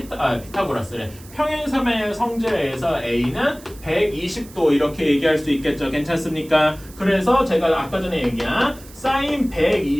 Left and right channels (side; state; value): right; noise; hiss, 21 dB below the sound